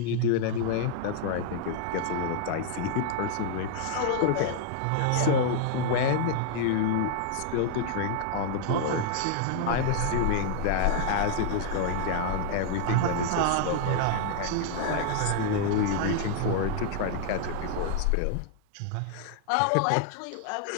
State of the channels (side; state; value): both; different; correlation -0.01